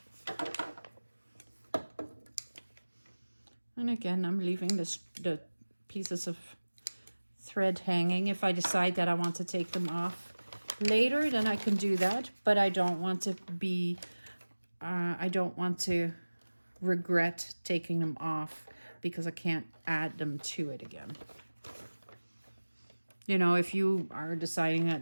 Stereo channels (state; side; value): inverted; both; correlation -1.00